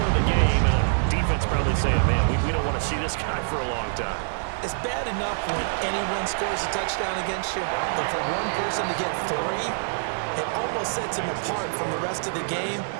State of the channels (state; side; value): silent; left; digital silence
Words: of the game. And the defense probably saying, man, we don't want to see this guy for a long time. It's bad enough when anyone scores a touchdown against you, but for one person to get 3, it almost sets him apart from the rest of the game,